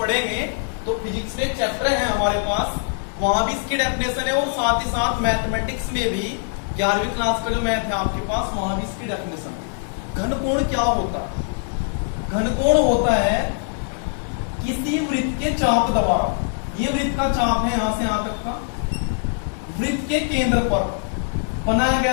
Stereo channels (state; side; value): silent; right; digital silence